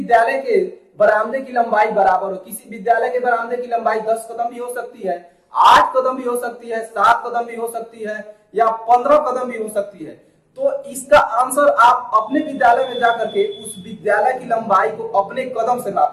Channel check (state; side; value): identical; both; correlation 1.00